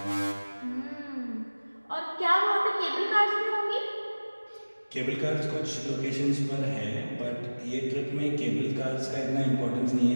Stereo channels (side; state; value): both; inverted; correlation -1.00